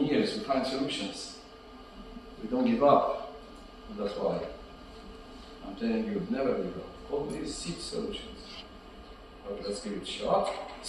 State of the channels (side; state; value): both; identical; correlation 1.00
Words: we find solutions. We don't give up. And that's why I'm telling you, never give up. Always seek solutions. Well, let's give it a shot.